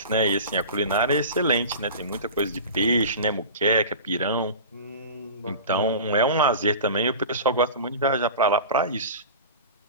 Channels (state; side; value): inverted; both; correlation -0.34